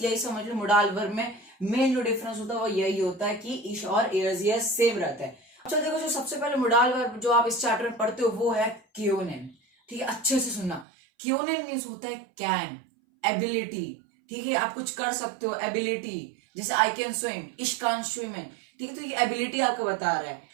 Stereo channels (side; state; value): left; drops out; at 10.9 s